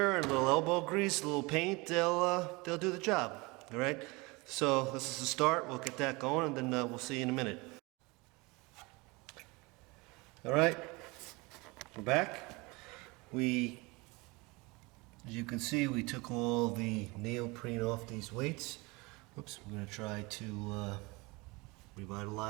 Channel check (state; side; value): quieter; left; 25.2 dB